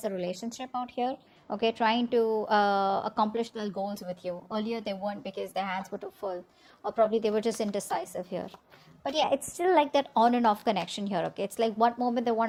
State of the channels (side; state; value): both; identical; correlation 1.00